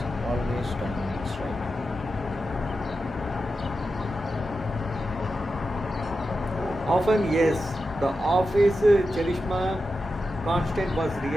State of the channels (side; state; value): both; normal; correlation 0.90